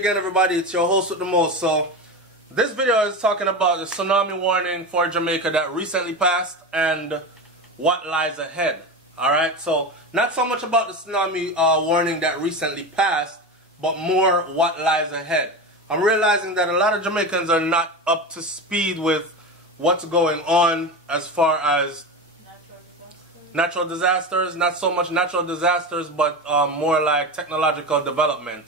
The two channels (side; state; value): both; normal; correlation 0.23